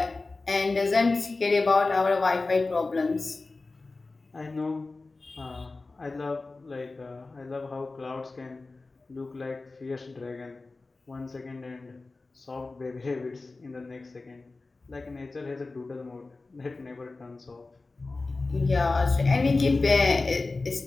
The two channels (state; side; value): quieter; right; 3.5 dB